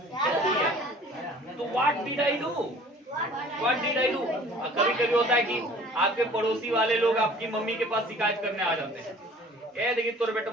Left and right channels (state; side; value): normal; both; correlation 0.49